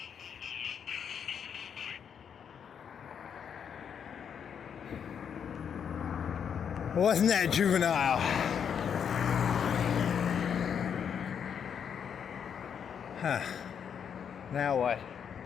Wasn't that juvenile? Huh. Now what?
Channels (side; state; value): right; quieter; 7.7 dB